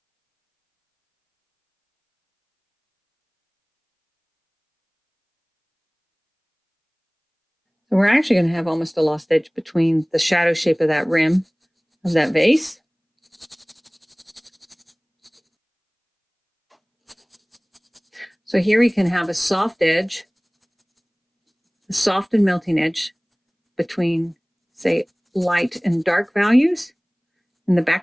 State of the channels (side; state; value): both; identical; correlation 1.00